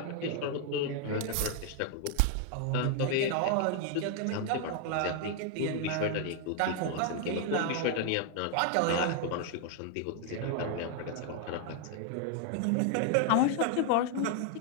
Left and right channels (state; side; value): different; both; correlation 0.00